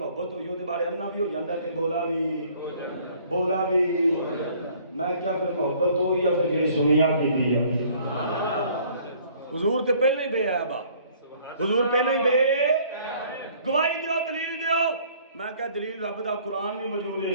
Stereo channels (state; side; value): inverted; both; correlation -0.57